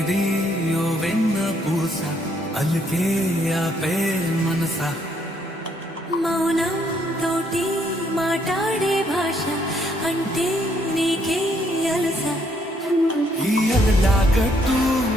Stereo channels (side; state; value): both; normal; correlation 0.70